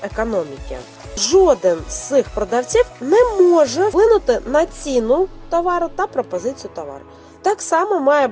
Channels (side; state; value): both; identical; correlation 1.00